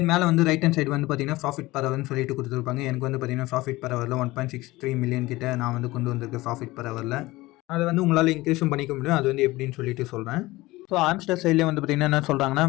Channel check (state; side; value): quieter; right; 19.6 dB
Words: மேலே வந்து ரைட் ஹேண்ட் சைடு வந்து பார்த்தீங்கன்னா ப்ராஃபிட் பர் ஹவர்னு சொல்லிட்டு கொடுத்துருப்பாங்க. எனக்கு வந்து பார்த்தீங்கன்னா ப்ராஃபிட் பர் ஹவரில் 1.63 மில்லியன் கிட்ட நான் வந்து கொண்டு வந்திருக்கேன் ப்ராஃபிட் பர் ஹவரில். அதை வந்து உங்களால் இன்க்ரீஸும் பண்ணிக்க முடியும். அது வந்து எப்படின்னு சொல்லிட்டு சொல்கிறேன். ஸோ ஆம்ஸ்டர் சைட்லேயே வந்து பார்த்தீங்கன்னா என்ன சொல்கிறாங்கன்னா